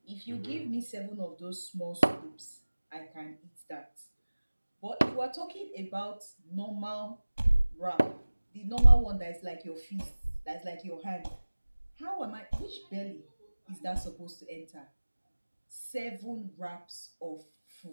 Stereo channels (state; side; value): inverted; both; correlation -1.00